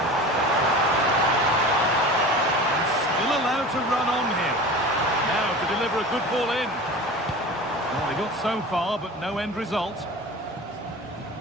And still allowed to run on here. Now to deliver a good ball in. Well, they got so far, but no end result.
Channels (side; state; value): both; normal; correlation 0.35